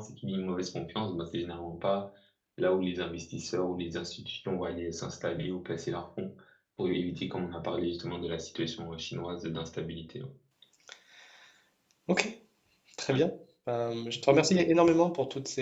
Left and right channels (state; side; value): identical; both; correlation 1.00